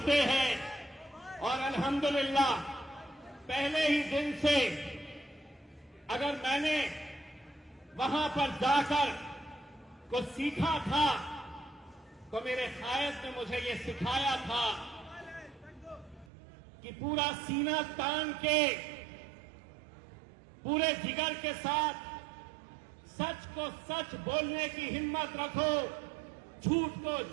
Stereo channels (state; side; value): drops out; left; at 16.3 s